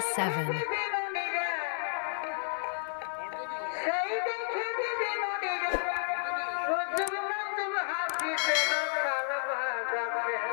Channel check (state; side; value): silent; right; digital silence